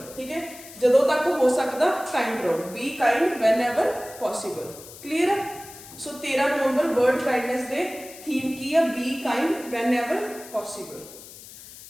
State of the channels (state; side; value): noise; left; hiss, 17 dB below the sound